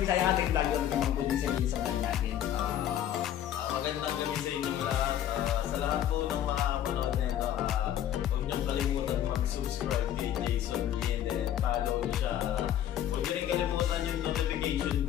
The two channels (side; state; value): right; quieter; 11.0 dB